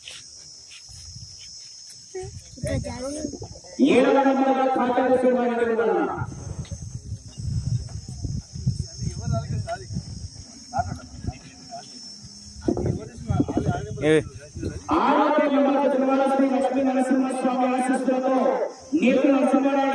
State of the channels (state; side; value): identical; both; correlation 1.00